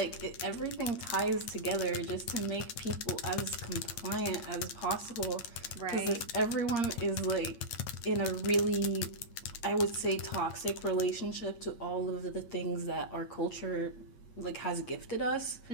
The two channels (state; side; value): late; right; 9.1 ms